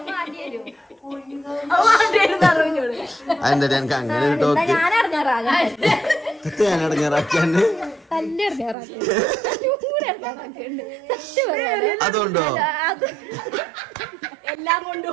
അതെന്താ എനിക്ക് അങ്ങനെ ഒരു ടോക്ക് ഞാൻ ഇറങ്ങാറാകാൻ ഞാൻ ഇടങ്ങാറാക്കിയാണ്ട് അതുകൊണ്ടോ? എല്ലാം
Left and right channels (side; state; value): left; drops out; at 8.8 s